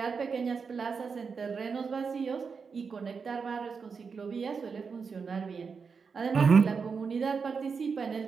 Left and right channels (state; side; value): quieter; left; 5.5 dB